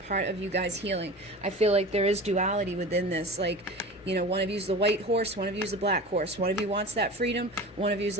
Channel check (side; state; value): both; normal; correlation 0.34